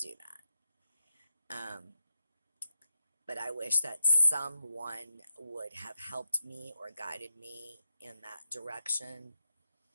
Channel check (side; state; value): both; inverted; correlation -0.83